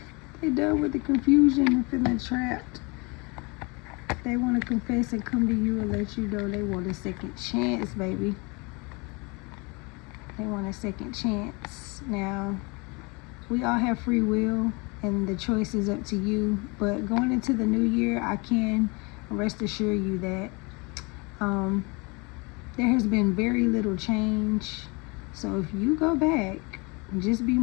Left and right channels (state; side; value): quieter; right; 28.4 dB